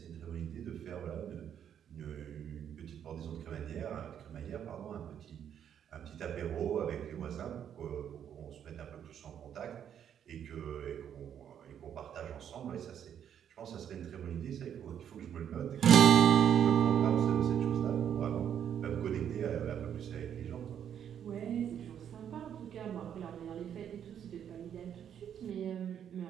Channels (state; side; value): quieter; left; 9.1 dB